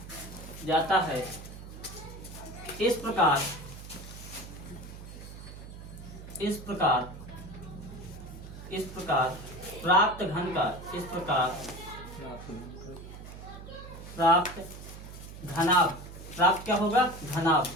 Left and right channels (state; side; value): noise; right; hum, 13 dB below the sound